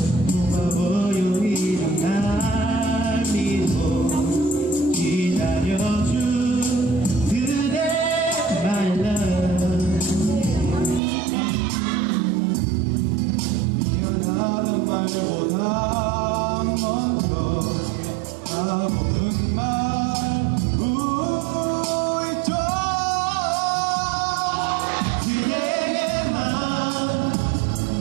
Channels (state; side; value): drops out; left; at 11.0 s